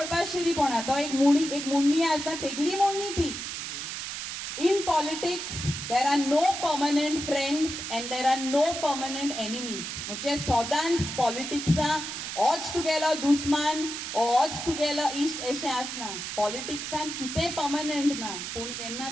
शिरीपणा. तो एक मुण्णी आसा, तेगली मुण्णी ती. In politics there are no permanent friends and there are no permanent enemies. म्हणजे सदांच पॉलिटिक्सां होच तुगेलो दुस्मान होच तुगेलो इश्ट अशें आसना. पॉलिटिक्सान कितें परमनंट ना. पूण जेन्ना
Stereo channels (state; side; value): noise; right; hiss, 6 dB below the sound